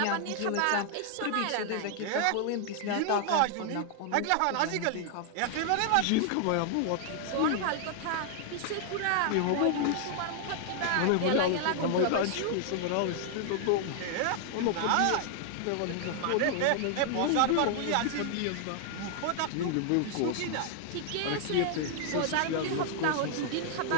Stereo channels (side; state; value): both; different; correlation 0.00